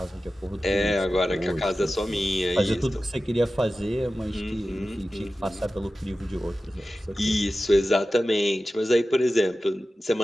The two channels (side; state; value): both; normal; correlation 0.95